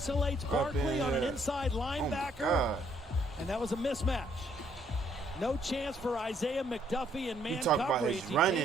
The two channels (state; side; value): normal; both; correlation 0.68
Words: Barkley on an inside linebacker, and that was a mismatch. No chance for Isaiah McDuffie and man You talk coverage. about his